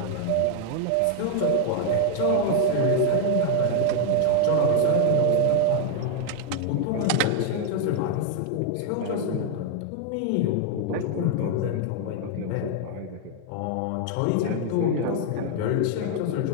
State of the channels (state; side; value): different; both; correlation 0.00